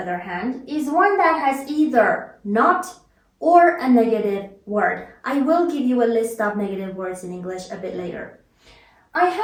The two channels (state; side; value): identical; both; correlation 1.00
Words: hand, is one that has either not or a negative word. I will give you a list of negative words in English a bit later. I